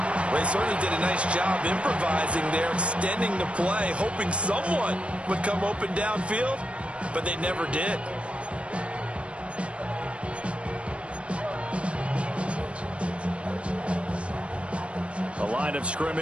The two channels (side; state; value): left; late; 0.060 ms